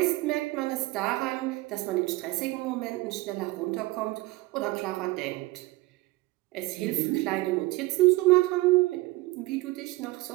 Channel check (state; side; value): quieter; left; 20.7 dB